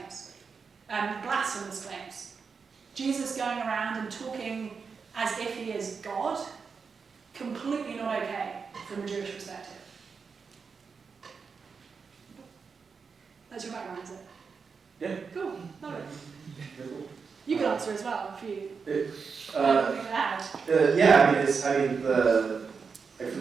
blasphemous claims. Jesus going around and talking as if he is God, completely not okay from a Jewish perspective. That's your background, is it? Yeah. Cool, love it. Very cool. You can answer as well if you Uh, anything to add. Yeah, for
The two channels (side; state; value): left; quieter; 5.4 dB